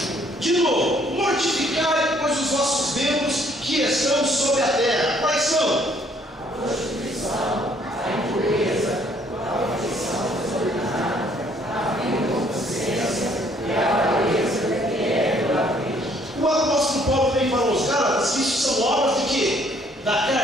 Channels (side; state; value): both; normal; correlation 0.63